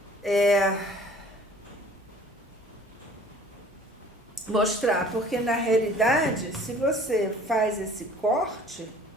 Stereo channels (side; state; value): both; normal; correlation 0.51